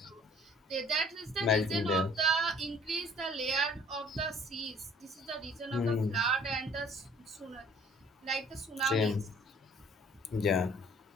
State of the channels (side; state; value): both; normal; correlation 0.54